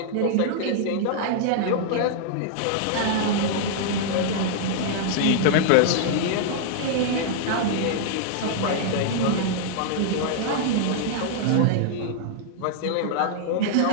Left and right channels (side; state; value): both; different; correlation -0.01